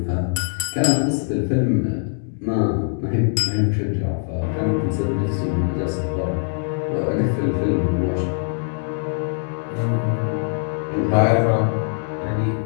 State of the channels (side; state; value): right; silent; 64 dB below the other